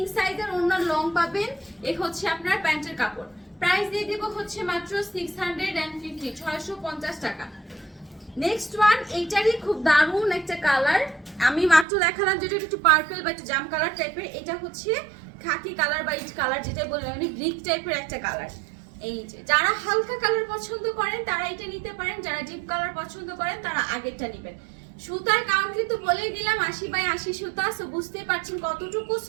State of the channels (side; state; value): left; drops out; at 11.9 s